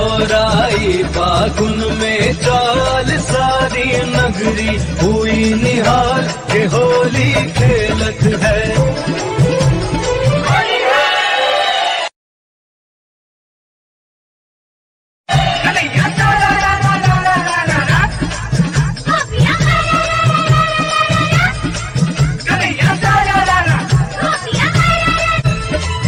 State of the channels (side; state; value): both; identical; correlation 1.00